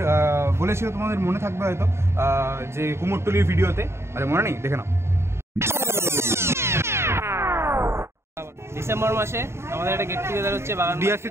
বলেছিল, তোমাদের মনে থাকবে হয়তো যে কুমোরটুলির ভিডিওতে, আচ্ছা মনে নেই, দেখে নাও। ডিসেম্বর মাসে আমাদের একটা গেট টুগেদার হচ্ছে বাগান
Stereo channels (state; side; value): late; left; 0.13 ms